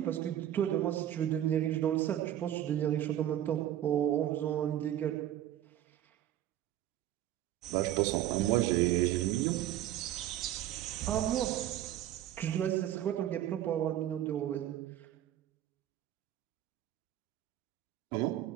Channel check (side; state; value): left; quieter; 12.1 dB